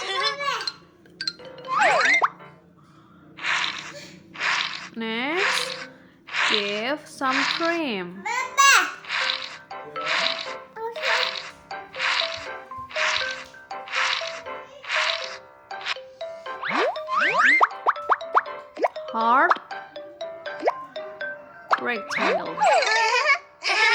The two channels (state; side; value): identical; both; correlation 1.00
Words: Next, give some cream. Heart, rectangle.